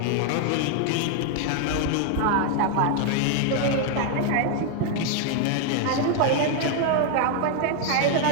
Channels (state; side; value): different; both; correlation 0.01